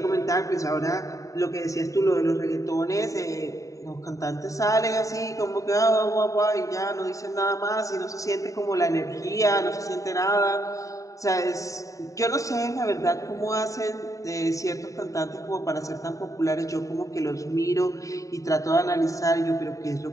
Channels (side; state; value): right; late; 0.16 ms